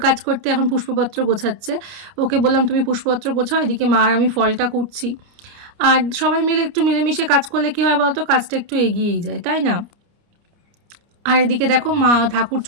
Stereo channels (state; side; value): late; left; 29 ms